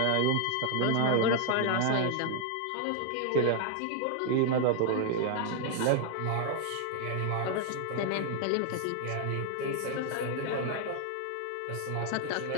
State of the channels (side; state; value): both; different; correlation 0.00